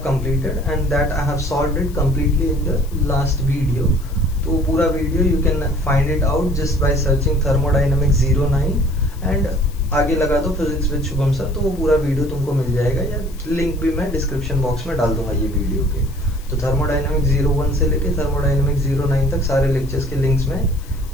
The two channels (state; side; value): noise; left; hiss, 23 dB below the sound